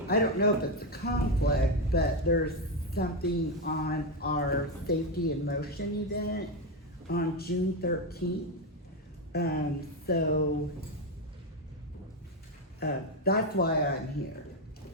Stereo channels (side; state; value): both; normal; correlation 0.09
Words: don't know if it's a conflict, but there's something on our Safety in Motion event on June 13th. That's why I'm here.